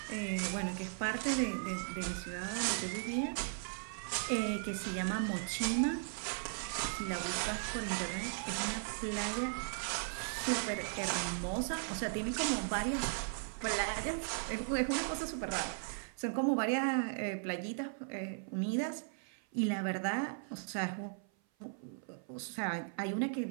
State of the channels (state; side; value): silent; left; 53 dB below the other